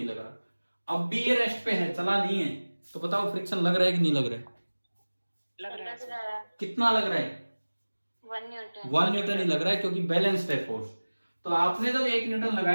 लग रहा। अब भी ये रेस्ट पे है, चला नहीं है, तो बताओ फ्रिक्शन लग रहा है कि नहीं लग रहा है? लग रहा है। कितना लग रहा है? 1 न्यूटन। 1 न्यूटन ही लग रहा है क्योंकि बैलेंस्ड है फोर्स। तो आपने जब 1 न्यूटन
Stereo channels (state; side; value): inverted; both; correlation -1.00